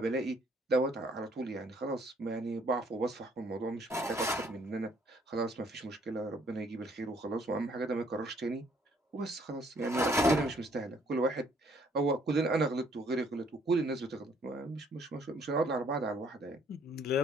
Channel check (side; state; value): both; normal; correlation 0.64